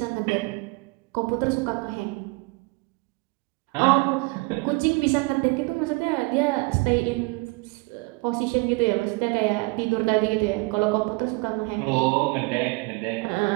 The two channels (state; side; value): quieter; left; 27.1 dB